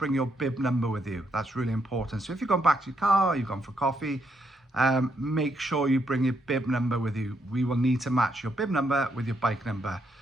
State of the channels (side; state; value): both; normal; correlation 0.77